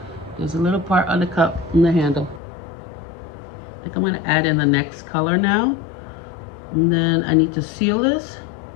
There's a little part on the cup in the handle. I think I'm gonna add in the next color now. And then I need to seal this.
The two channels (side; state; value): right; drops out; at 2.4 s